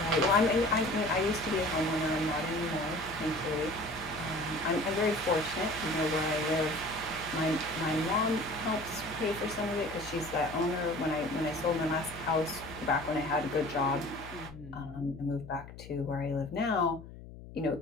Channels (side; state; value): left; noise; hum, 15 dB below the sound